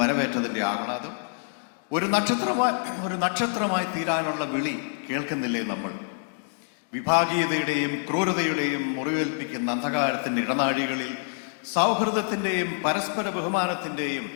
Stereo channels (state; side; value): silent; right; digital silence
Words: ആഹ്ലാദം, ഒരു നക്ഷത്രമായി തീരാനുള്ള വിളി കേൾക്കുന്നില്ലേ നമ്മൾ? വിഭാഗീയതയുടെയും ക്രൂരതയുടെയും മുറിവേൽപ്പിക്കുന്ന അന്ധകാരത്തിൻ്റെ ഇടനാഴികളിൽ സൗഹൃദത്തിൻ്റെയും പരസ്പര ബഹുമാനത്തിൻ്റെയും